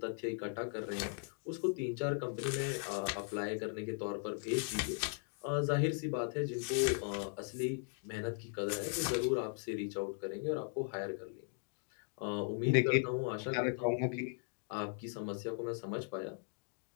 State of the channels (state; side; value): silent; right; 52 dB below the other